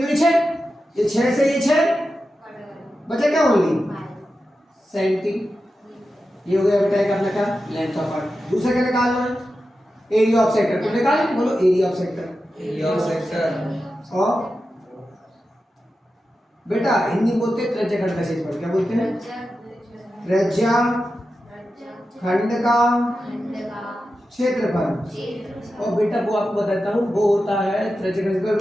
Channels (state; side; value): normal; both; correlation 0.91